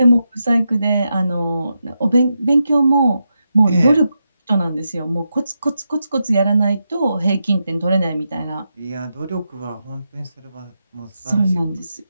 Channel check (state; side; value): inverted; both; correlation -0.87